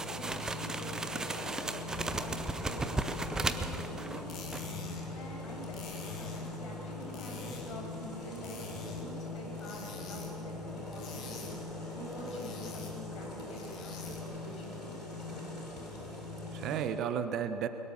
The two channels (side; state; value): both; normal; correlation 0.46